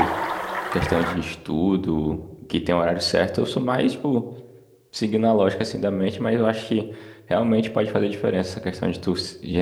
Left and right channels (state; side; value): identical; both; correlation 1.00